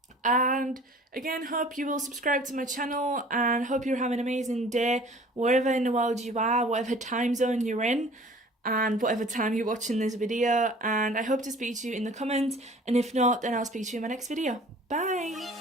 And again, hope you will subscribe to my channel, and hope you're having an amazing day wherever in the world you are, whatever time zone you're in, and whatever time you're watching this video. And I hope to speak to you in the comments, and if not, then I'll speak to you in my next video.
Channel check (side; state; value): both; normal; correlation 0.48